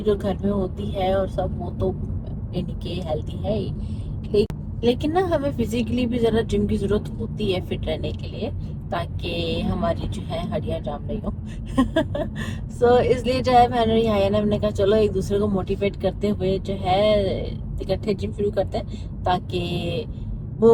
जो घर में होती है और सब वो तो इनके हेल्दी है ही, लेकिन ना हमें फिजिकली भी ज़रा जिम की ज़रूरत होती है फिट रहने के लिए, ताकि हमारी जो है हड्डियां जाम नहीं हो। सो इसलिए जो है मैंने कहा चलो एक दूसरे को मोटिवेट करते हुए जो है इकट्ठे जिम शुरू करते हैं, ताकि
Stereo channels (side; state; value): both; identical; correlation 1.00